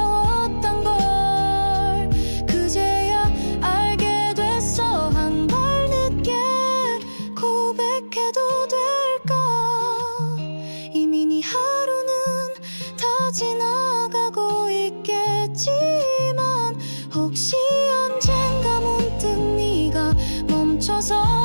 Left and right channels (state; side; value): inverted; both; correlation -1.00